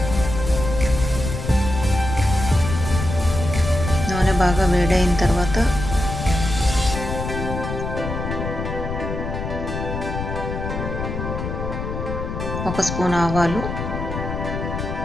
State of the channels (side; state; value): left; noise; rumble, 5 dB below the sound